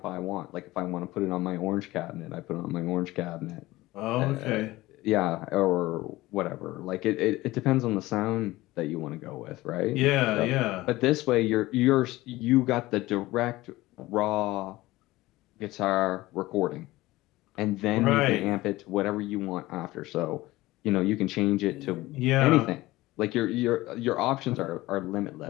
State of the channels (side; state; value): right; quieter; 18.5 dB